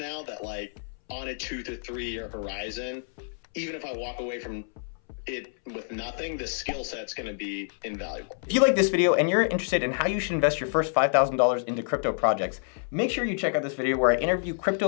that like on a 2 to 3 year horizon, even if I walk away from it with nothing, the skill set's going to be invaluable. If you like this video and you're interested in how you should invest your first $5,000 into crypto projects, make sure you check out this video where I interview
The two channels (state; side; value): silent; right; 60 dB below the other